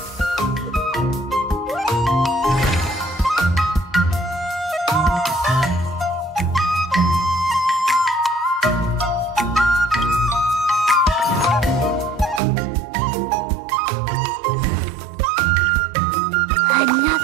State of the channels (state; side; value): drops out; left; at 12.4 s